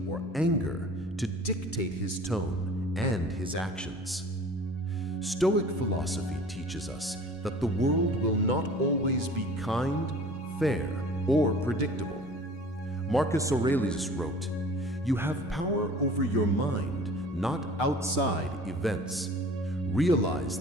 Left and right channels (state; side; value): normal; both; correlation 0.45